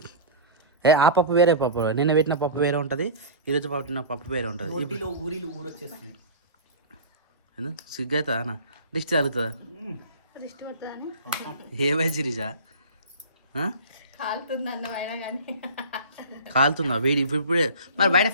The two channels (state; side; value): inverted; both; correlation -0.33